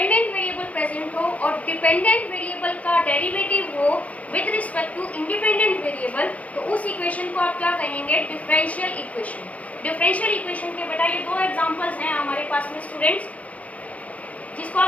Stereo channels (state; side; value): late; right; 0.068 ms